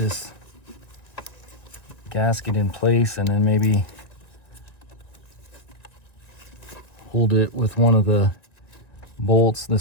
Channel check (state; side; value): late; right; 1.6 ms